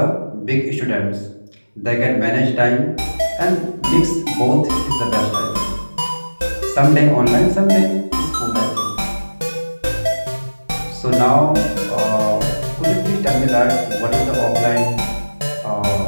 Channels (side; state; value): both; inverted; correlation -1.00